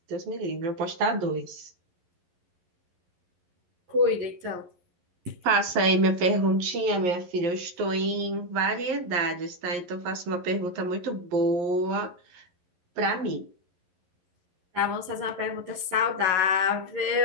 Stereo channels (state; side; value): late; left; 11 ms